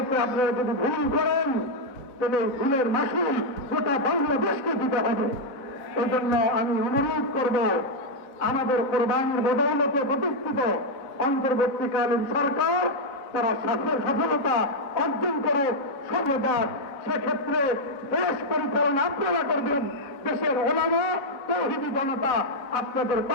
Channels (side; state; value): right; late; 4.0 ms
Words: আপনারা যদি ভুল করেন তাহলে ভুলের মাসুল গোটা বাংলাদেশকে দিতে হবে। এই জন্য আমি অনুরোধ করব, আমাদের কোরবানির বদৌলতে প্রতিষ্ঠিত অন্তর্বর্তীকালীন সরকার তারা সফলতা অর্জন করে সর্বদার, সেক্ষেত্রে দেশ পরিচালনা আপনারা করবেন। দেশের ওলামা তাওহীদি জনতা আপনাদের